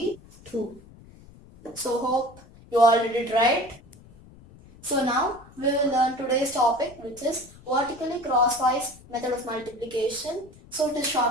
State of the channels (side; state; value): left; noise; rumble, 23 dB below the sound